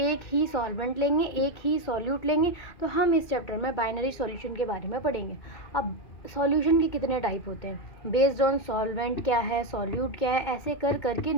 ही सॉल्वेंट लेंगे, एक ही सॉल्यूट लेंगे, तो हम इस चैप्टर में बाइनरी सॉल्यूशन के बारे में पढ़ेंगे। अब सॉल्यूशन के कितने टाइप होते हैं बेस्ड ऑन सॉल्वेंट क्या है, सॉल्यूट क्या है, ऐसे कर करके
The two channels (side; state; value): right; late; 2.2 ms